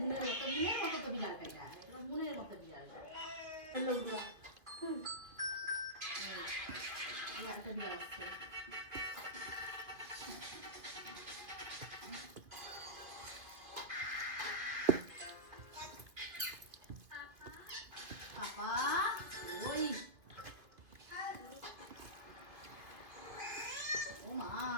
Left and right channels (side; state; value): left; late; 2.3 ms